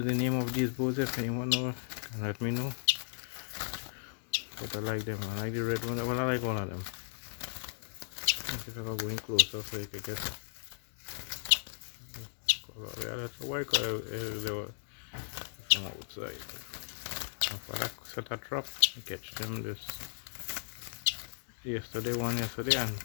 the name of these birds. If anyone know, can let me know. But I like them. I like the red one. Well, I like all of them. Let's see if I can go in closer so you can get color. Yeah, that's a white color from outside. If I set a trap, I catch them this one yesterday and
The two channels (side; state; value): right; silent; digital silence